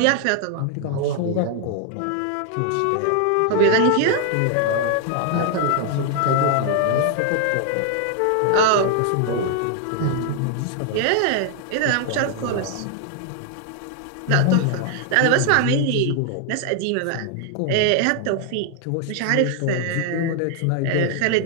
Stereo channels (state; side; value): different; both; correlation 0.00